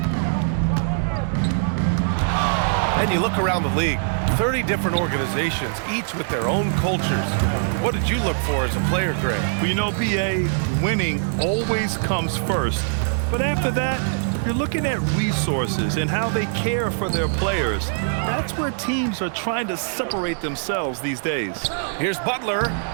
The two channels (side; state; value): left; silent; digital silence